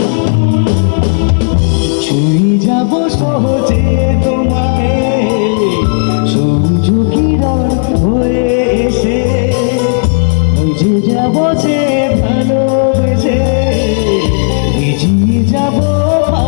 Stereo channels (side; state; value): right; silent; digital silence